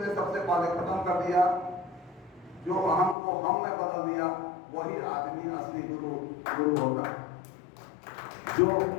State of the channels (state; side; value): drops out; right; at 3.2 s